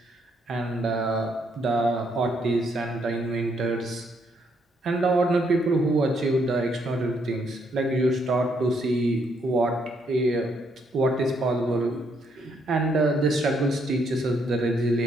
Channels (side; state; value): both; normal; correlation 0.73